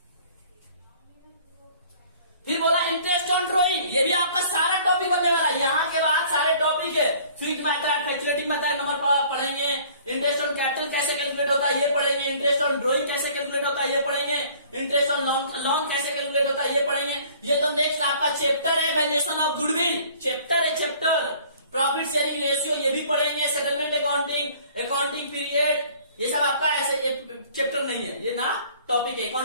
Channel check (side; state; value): both; inverted; correlation -0.53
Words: फिर बोला इंटरेस्ट ऑन ड्रॉइंग, ये भी आपका सारा टॉपिक बनने वाला है। यहां के बाद सारे टॉपिक है, fixed method, calculating method number पढ़ेंगे, इंटरेस्ट ऑन कैपिटल कैसे कैलकुलेट होता है ये पढ़ेंगे, इंटरेस्ट ऑन ड्रॉइंग कैसे कैलकुलेट होता है ये पढ़ेंगे, इंटरेस्ट ऑन लोन कैसे कैलकुलेट होता है ये पढ़ेंगे। ये तो नेक्स्ट आपका चैप्टर है, वैल्यूएशन ऑफ गुडविल चैप्टर है, चैप्टर प्रॉफिट शेयरिंग रेशियो ये भी पढ़ेंगे, सेटलमेंट अकाउंटिंग, अकाउंटिंग पीरियड, ये सब आपका ऐसे चैप्टर नहीं है, ये ना टॉपिक है।